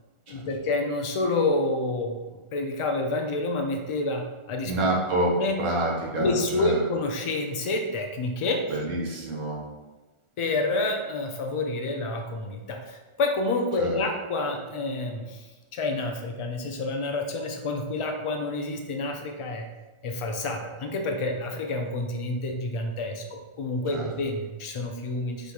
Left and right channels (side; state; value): right; late; 1.4 ms